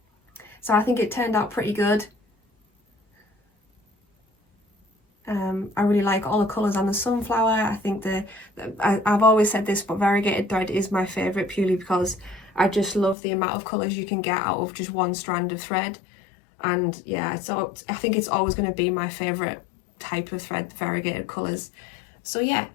So I think it turned out pretty good. I really like all the colours on the sunflower. I think I've always said this, but variegated thread is my favourite, purely because I just love the amount of colours you can get out of just one strand of thread. And yeah, I think it's always going to be my favourite type of thread, the variegated colours. So yeah,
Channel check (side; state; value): right; drops out; at 13.2 s